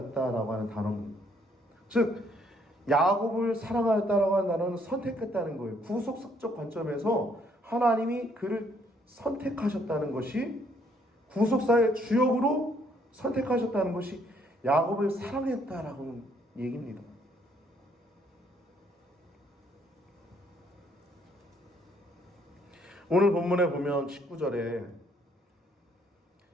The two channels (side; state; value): both; normal; correlation 0.68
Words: 하는 단어입니다. 즉 야곱을 사랑하였다라고 하는 단어는 선택했다는 거예요. 구속적 관점에서 하나님이 그를 선택하셨다는 것이, 구속사의 주역으로 선택하셨다는 것이 야곱을 사랑했다라고 얘기입니다. 오늘 본문에 보면 19절에